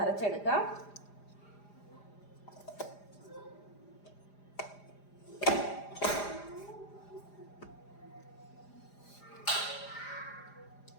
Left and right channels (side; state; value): right; late; 4.9 ms